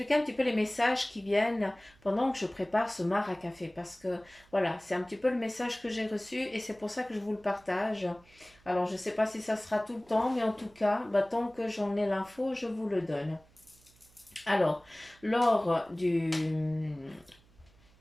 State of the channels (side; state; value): right; noise; hum, 29 dB below the sound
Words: un petit peu les messages qui viennent pendant que je prépare ce mar à café parce que voilà, c'est un petit peu le message que j'ai reçu et c'est pour ça que je vous le partage. Alors, je ne sais pas si ça sera tout le temps, mais en tout cas, tant que j'en ai l'info, je vous le donne. Alors, lors du...